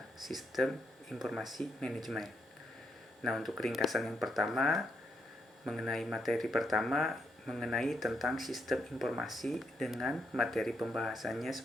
Sistem Informasi Manajemen. Nah, untuk ringkasan yang pertama mengenai materi pertama mengenai tentang sistem informasi dengan materi pembahasannya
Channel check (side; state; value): both; normal; correlation 0.79